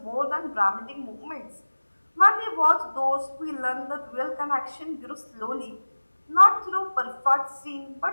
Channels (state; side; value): inverted; both; correlation -1.00